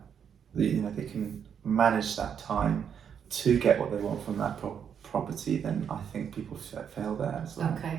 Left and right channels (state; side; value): quieter; left; 7.9 dB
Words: they can manage that time to get what they want from that property, then I think people fail there as well.